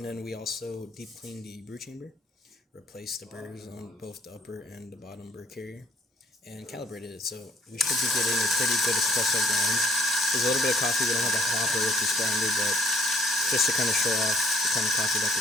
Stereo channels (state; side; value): normal; both; correlation 0.60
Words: then we also deep cleaned the brew chamber, replaced the burrs on both the upper and the bottom burr carrier, and calibrated it. So we should be getting a pretty good espresso grind. There's a little bit of coffee. We don't have a hopper with this grinder, but just to kind of show off the kind of coffee that